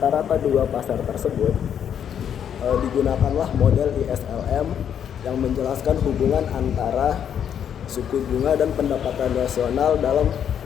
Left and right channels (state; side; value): quieter; right; 8.7 dB